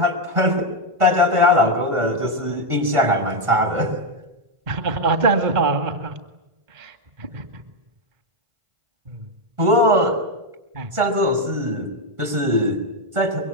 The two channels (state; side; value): late; left; 1.5 ms